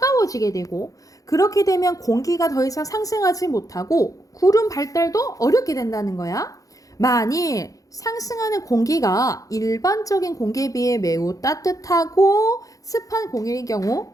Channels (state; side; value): late; right; 0.17 ms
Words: 되고, 그렇게 되면 공기가 더 이상 상승하지 못하고 구름 발달도 어렵게 된다는 거야. 만일 상승하는 공기가 일반적인 공기에 비해 매우 따뜻하고 습한 공기의 경우